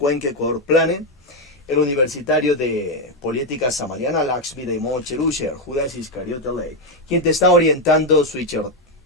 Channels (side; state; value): both; normal; correlation 0.04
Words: Ecuador Planet, el Universitario de Política Samariana, Lakshmi Daimocherushi, Judas Iscariota Ley, quien te está orientando, Switcher